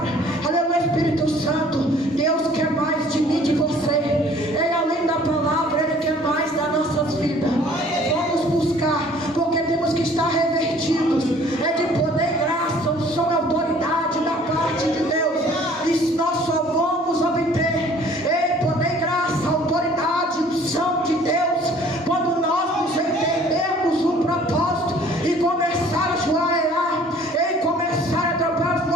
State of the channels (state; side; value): normal; both; correlation 0.54